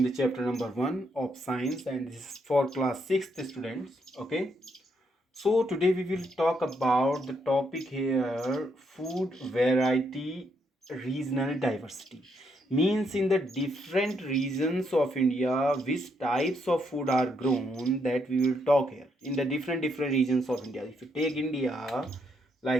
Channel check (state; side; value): normal; both; correlation 0.76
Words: the chapter number 1 of science, and this is for class 6th students. Okay. So today we will talk about the topic here: food variety, regional diversity. Means in the different regions of India, which types of food are grown, that we will talk here. In the different regions of India. If you take India